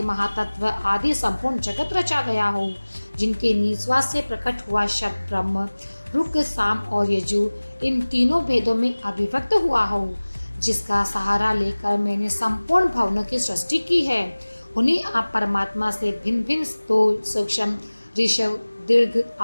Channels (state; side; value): inverted; both; correlation -1.00